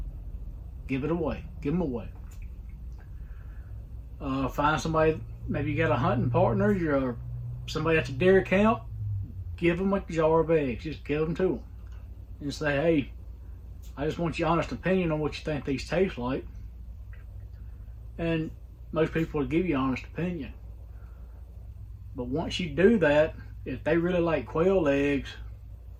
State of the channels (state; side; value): identical; both; correlation 1.00